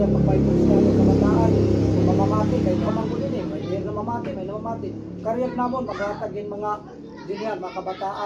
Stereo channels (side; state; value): both; identical; correlation 1.00